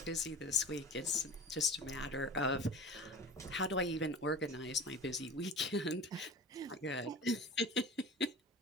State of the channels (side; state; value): both; normal; correlation 0.36